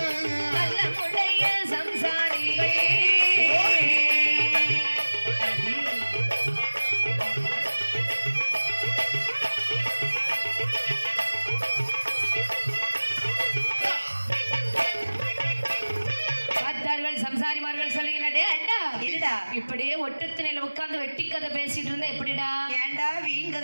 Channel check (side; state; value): both; inverted; correlation -1.00